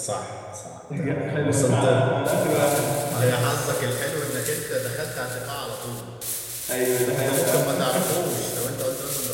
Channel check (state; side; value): identical; both; correlation 1.00